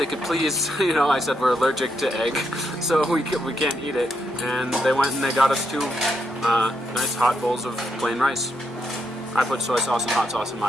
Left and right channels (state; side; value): normal; both; correlation 0.79